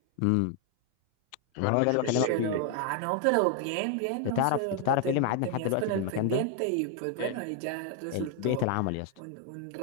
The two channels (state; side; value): different; both; correlation 0.00